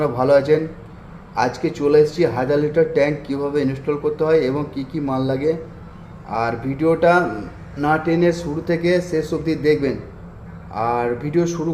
ভালো আছেন। আজকে চলে এসেছি 1000 লিটার ট্যাঙ্ক কীভাবে ইনস্টল করতে হয় এবং কি কি মাল লাগে। আর ভিডিওটা না টেনে শুরু থেকে শেষ অবধি দেখবেন। আর ভিডিও শুরু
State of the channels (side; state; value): both; identical; correlation 1.00